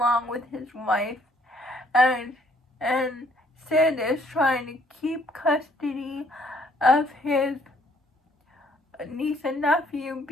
with his wife, and Sid is trying to keep custody of his niece and nephew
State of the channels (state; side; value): normal; both; correlation 0.64